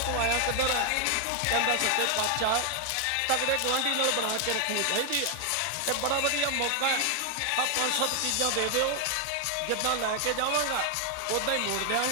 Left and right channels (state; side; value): different; both; correlation 0.00